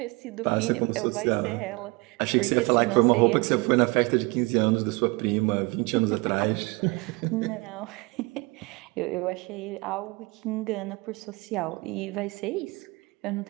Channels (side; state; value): left; quieter; 26.2 dB